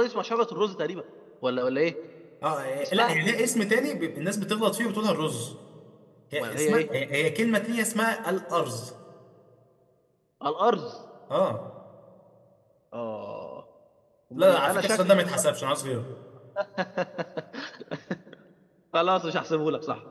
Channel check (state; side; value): identical; both; correlation 1.00